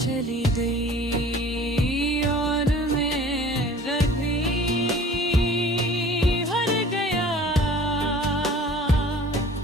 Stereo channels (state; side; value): normal; both; correlation 0.47